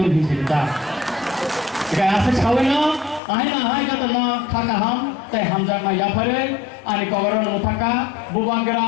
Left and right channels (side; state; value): right; drops out; at 3.2 s